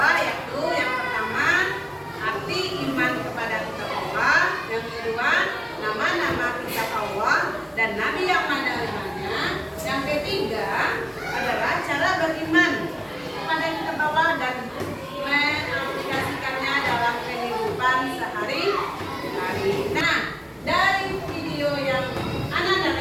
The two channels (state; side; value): identical; both; correlation 1.00